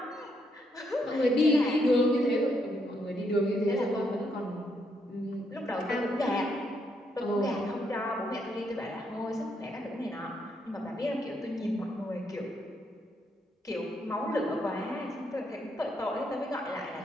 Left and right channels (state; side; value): normal; both; correlation 0.76